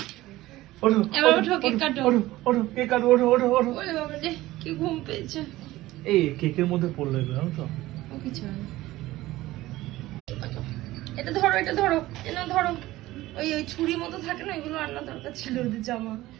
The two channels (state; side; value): quieter; left; 17.1 dB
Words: ওঠো, এবার ওঠো, ওঠো, কেক কাটো। ওঠো, ওঠো, কেক কাটো, ওঠো, ওঠো, ওঠো। ওরে বাবা রে, কি ঘুম পেয়েছে। এই কেকের মধ্যে পড়লো এগুলো, জানো তো? ও কিছু হয় না। এটা ধরো, এটা ধরো, এটা ধরো। ওই ওই ছুরি মতো থাকে না, এগুলো আনা দরকার ছিল ওদের জামা।